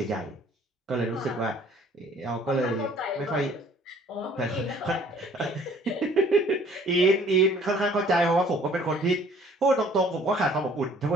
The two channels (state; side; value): normal; both; correlation 0.56